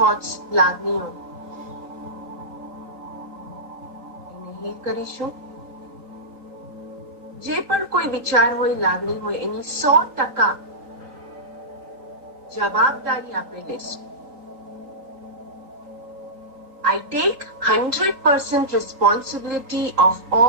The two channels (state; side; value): late; left; 3.9 ms